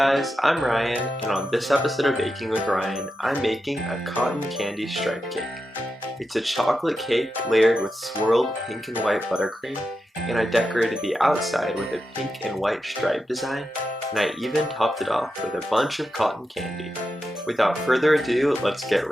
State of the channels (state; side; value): normal; both; correlation 0.89